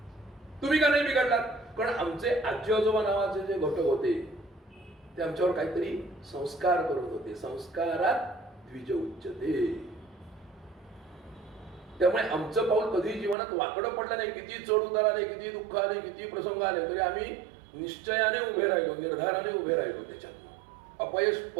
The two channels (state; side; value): drops out; left; at 13.4 s